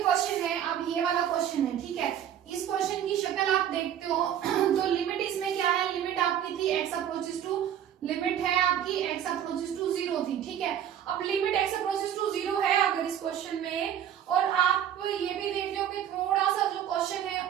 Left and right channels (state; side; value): quieter; left; 10.0 dB